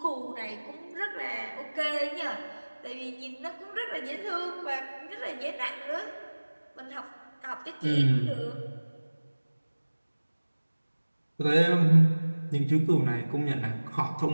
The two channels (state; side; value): inverted; both; correlation -1.00